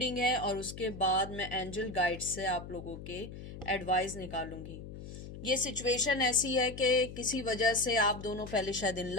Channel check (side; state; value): left; noise; hum, 12 dB below the sound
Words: है, और उसके बाद मैं एंजल गाइड से आप लोगों के एडवाइस निकालूंगी। ये सिचुएशन ऐसी है कि किसी वजह से आप दोनों पहले शायद इन